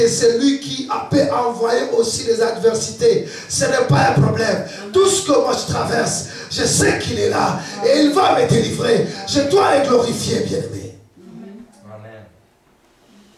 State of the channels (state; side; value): identical; both; correlation 1.00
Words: c'est lui qui peut envoyer aussi les adversités. Ce n'est pas un problème. Tout ce que moi je traverse, je sais qu'il est là. Et il va me délivrer. Je dois le glorifier, bien-aimé.